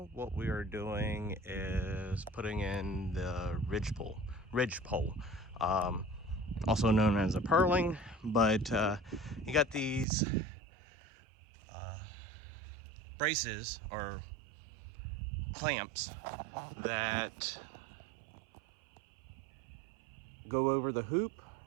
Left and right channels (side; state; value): left; drops out; at 10.1 s